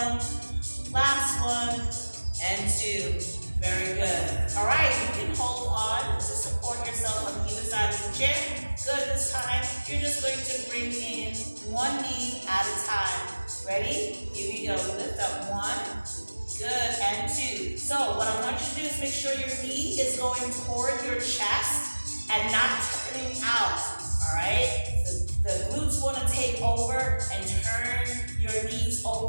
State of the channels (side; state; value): both; inverted; correlation -1.00